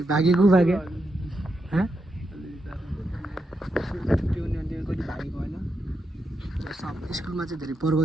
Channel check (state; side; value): normal; both; correlation 0.84